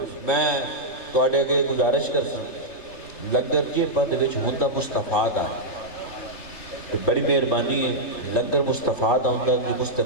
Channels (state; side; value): late; right; 3.3 ms